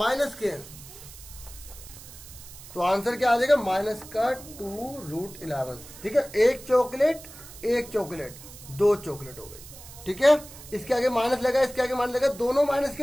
के हैं। तो आंसर क्या आ जाएगा? -2√11, ठीक है। 1 चॉकलेट 2 चॉकलेट हो गई, ठीक है। इसके आगे माइनस लगा, इसके आगे माइनस लगा, दोनों माइनस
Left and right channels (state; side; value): noise; right; hiss, 17 dB below the sound